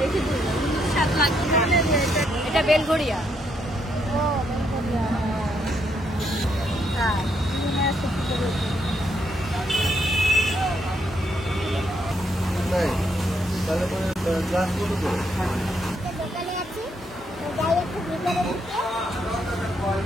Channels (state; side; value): normal; both; correlation 0.75